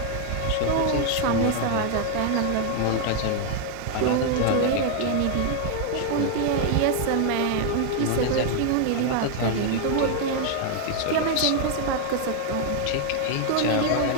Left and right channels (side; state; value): both; different; correlation 0.00